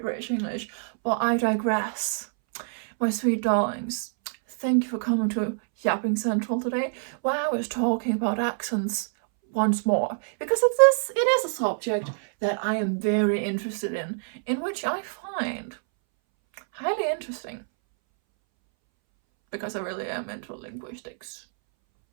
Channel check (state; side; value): silent; left; 61 dB below the other